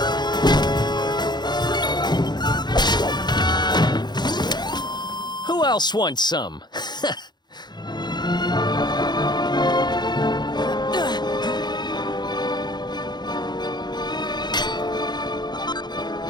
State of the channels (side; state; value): right; late; 0.21 ms